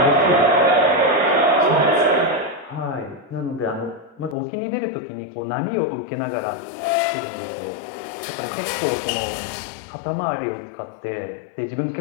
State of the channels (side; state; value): right; drops out; at 4.4 s